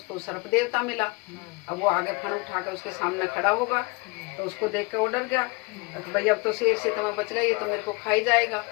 सर्प देवता मिला। अब वो आगे फन उठा के उसके सामने खड़ा होगा, तो उसको देख के वो डर गया, भाई अब तो शेर से तो मैं बच गई, ये तो मेरे को खाई जाएगा।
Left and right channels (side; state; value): right; quieter; 27.6 dB